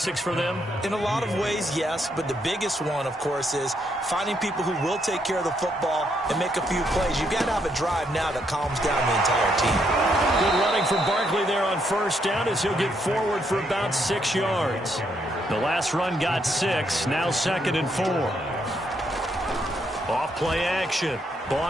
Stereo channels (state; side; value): normal; both; correlation 0.75